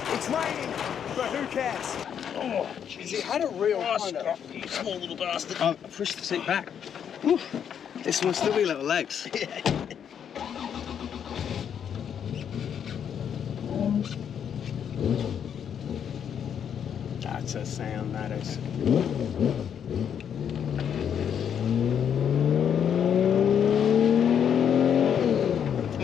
It's raining, but who cares? Oh, jeez. It had a real kind of... You small little bastard. Oh, I pushed the seat back. Woo. This must still be little legs. That's a sound, that is.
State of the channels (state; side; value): quieter; right; 8.3 dB